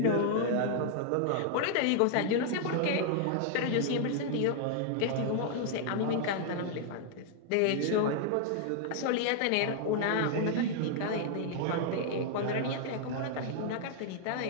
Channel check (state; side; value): different; both; correlation -0.01